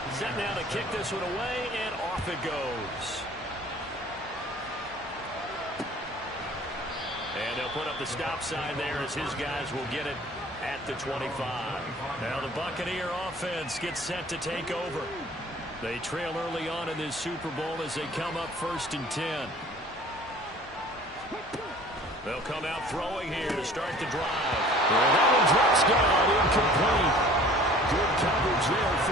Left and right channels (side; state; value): both; normal; correlation 0.49